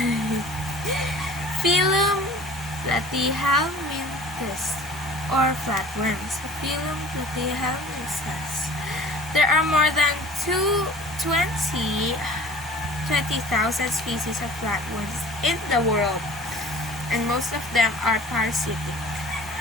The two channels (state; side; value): normal; both; correlation 0.45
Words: Phylum Platyhelminthes or flatworms. Phylum Platyhelminthes. There are more than 20,000 species of flatworms in the world, and most of them are parasitic.